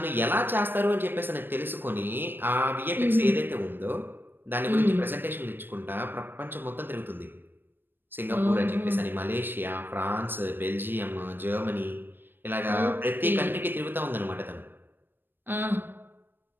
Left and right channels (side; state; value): left; late; 0.096 ms